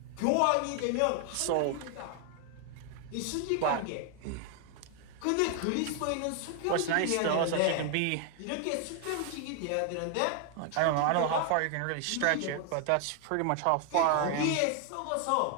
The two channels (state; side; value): different; both; correlation 0.00